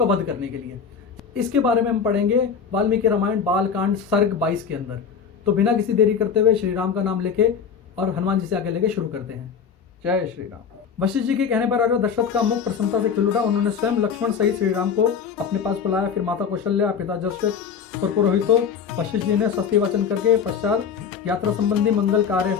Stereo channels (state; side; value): quieter; right; 6.7 dB